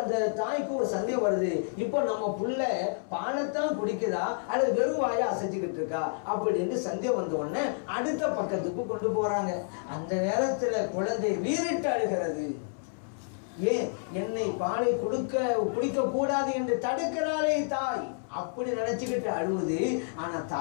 அந்த தாய்க்கு ஒரு சந்தேகம் வருது, இப்போ நம்ம புள்ள பாலைத்தான் குடிக்குதா அல்லது வெறும் வாயை அசைச்சுக்கிட்டு இருக்கா அப்படின்னு சந்தேகம் வந்த உடனே அடுத்த பக்கத்துக்கு கொண்டு போறாங்க. அந்த நேரத்துல குழந்தை வீறிட்டு அழுகிறது. ஏன் என்னை பாலை குடிக்க கூடாது என்று தடுக்கிறாளே தாய், அப்படி நினைச்சுக்கிட்டு அழுவுது. ஆனா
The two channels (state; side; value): silent; right; 58 dB below the other